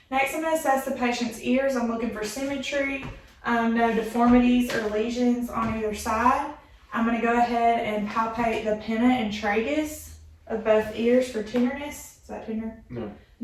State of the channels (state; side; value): identical; both; correlation 1.00